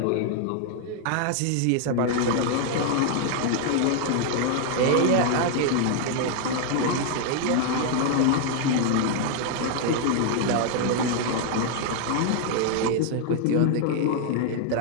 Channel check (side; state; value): both; different; correlation 0.00